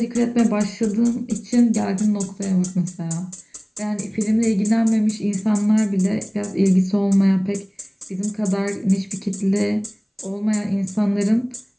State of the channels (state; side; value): identical; both; correlation 1.00